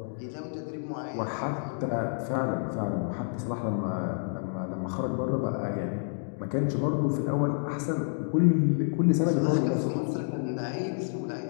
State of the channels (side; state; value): right; silent; digital silence